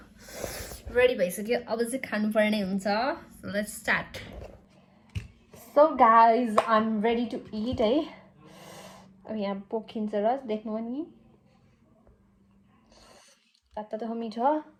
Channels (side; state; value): both; identical; correlation 1.00